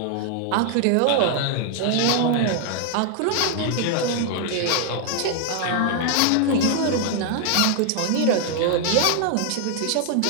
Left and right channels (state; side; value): different; both; correlation 0.00